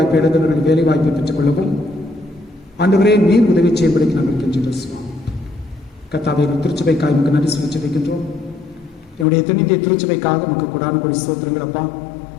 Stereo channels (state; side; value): drops out; right; at 9.2 s